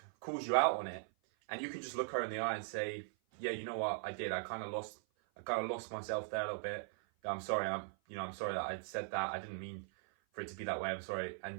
calls you out on it, and you can just look her in the eye and say, yeah, you know what, I did. I kind of lost myself there a little bit. I'm sorry. I'm sorry that I said that. I didn't mean for it to be that way. I'm sorry.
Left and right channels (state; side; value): silent; left; 51 dB below the other